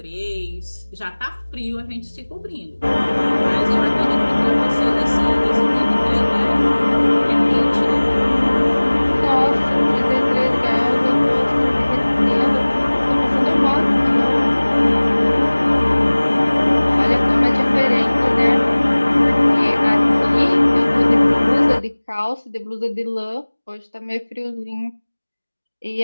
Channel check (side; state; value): both; inverted; correlation -1.00